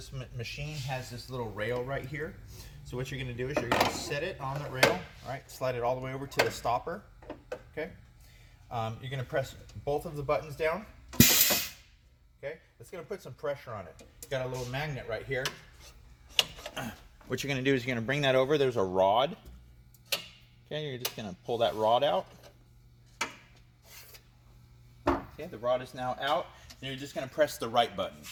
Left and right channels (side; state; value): both; identical; correlation 1.00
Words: machine has this little rail right here. So what you're going to do is you're going to set it on the rail, all right, slide it all the way over to the stopper, okay. You're going to press both of the buttons down, okay. It's going to put some pressure on it. Got a little magnet right here. What you're going to do is you're going to bring that over. There's a rod, okay. You're just going to pull that rod out. Okay, the rod is now out, and you're just going to press the right button.